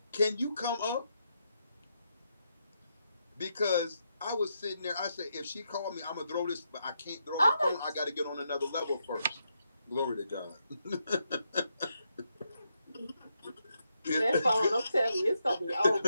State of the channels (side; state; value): both; inverted; correlation -0.82